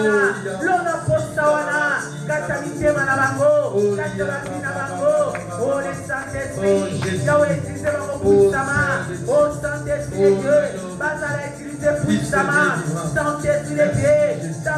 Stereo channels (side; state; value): both; identical; correlation 1.00